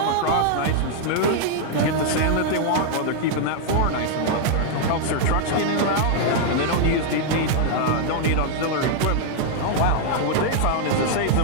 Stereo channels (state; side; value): different; both; correlation -0.01